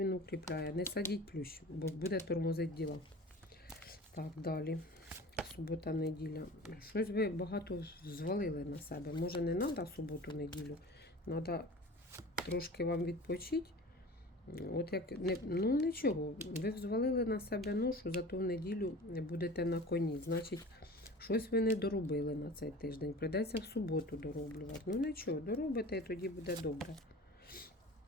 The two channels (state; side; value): normal; both; correlation 0.39